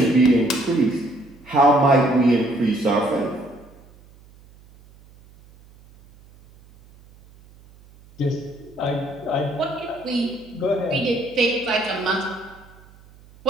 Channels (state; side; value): noise; right; hum, 25 dB below the sound